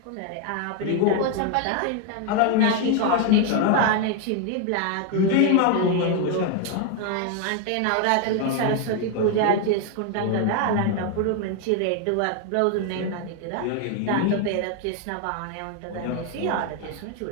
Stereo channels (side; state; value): both; different; correlation 0.01